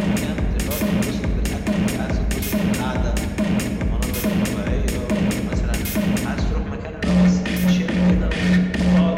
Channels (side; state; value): both; identical; correlation 1.00